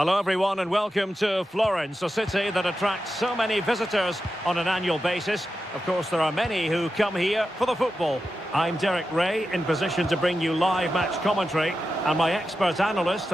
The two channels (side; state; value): both; normal; correlation 0.90